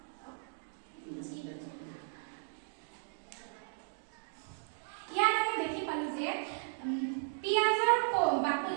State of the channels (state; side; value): silent; left; digital silence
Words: ইয়াত আমি দেখি পালো যে পিয়াজৰ বাকলি